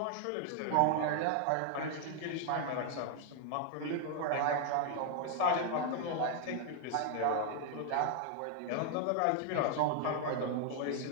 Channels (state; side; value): different; both; correlation 0.00